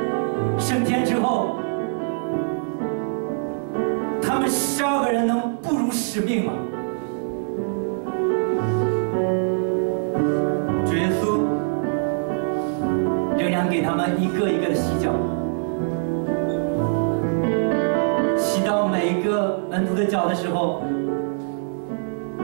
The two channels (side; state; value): left; silent; digital silence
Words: 升天之后，他们12个人能不辱使命吗？主耶稣仍然给他们一个一个的洗脚，洗到每一个门徒的脚的时候，